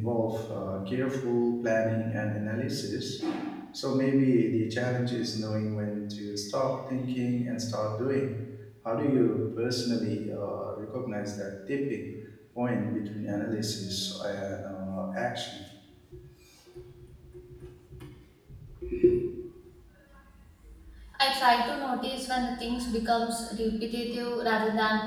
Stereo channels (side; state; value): both; identical; correlation 1.00